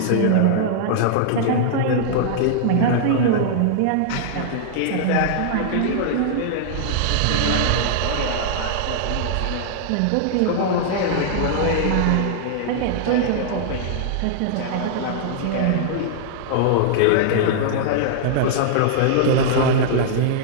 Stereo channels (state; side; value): different; both; correlation -0.01